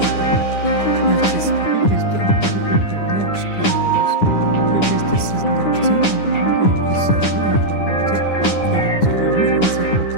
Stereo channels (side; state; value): right; late; 9.9 ms